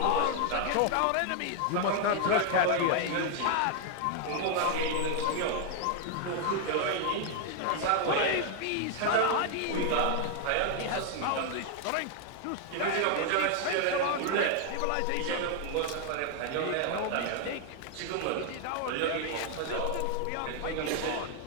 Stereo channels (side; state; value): both; different; correlation 0.00